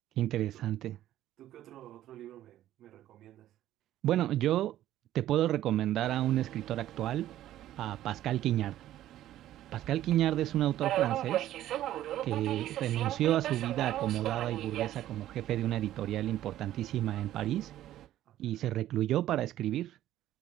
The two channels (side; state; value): left; quieter; 13.1 dB